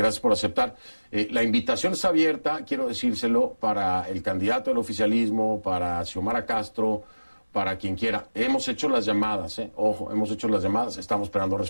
por aceptar. La invitación está abierta, quiero decírselo, para el candidato del oficialismo, para Xiomara Castro, para quien quiera. Hemos hecho las llamadas, ojo, hemos hecho las llamadas, estamos esperando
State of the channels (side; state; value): both; inverted; correlation -1.00